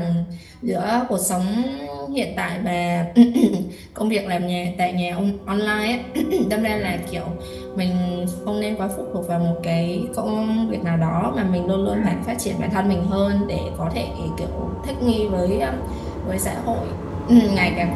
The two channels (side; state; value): both; identical; correlation 1.00